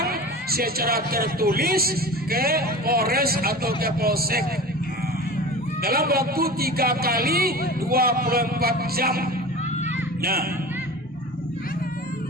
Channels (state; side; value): normal; both; correlation 0.34